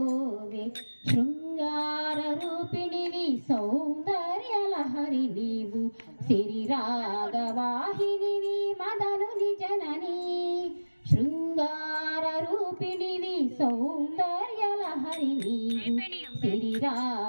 శృంగార రూపిణివి సౌందర్య లహరి నీవు సిరి రాగవాహినివి మదనుని జనని శృంగార రూపిణివి సౌందర్య లహరి నీవు సిరి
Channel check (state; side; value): inverted; both; correlation -1.00